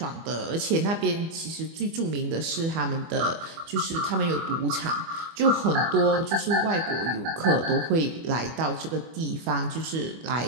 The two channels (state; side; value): late; left; 25 ms